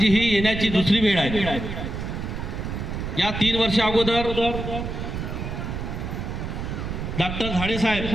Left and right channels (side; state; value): right; noise; rumble, 5 dB below the sound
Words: ही येण्याची दुसरी वेळ आहे। या 3 वर्ष अगोदर डॉक्टर झाडे साहेब